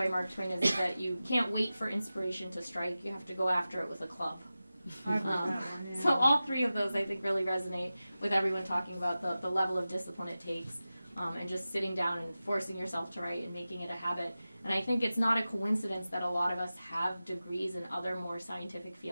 Mark Twain is that you can't wait for inspiration to strike. You have to go after it with a club. I've heard that one, yeah. So all three of those I think really resonate with everyone talking about the level of discipline it takes. And just sitting down and forcing yourself to write and making it a habit. And I think it's not a coincidence that a lot of us have degrees in other more scientific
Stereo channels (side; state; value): both; inverted; correlation -0.95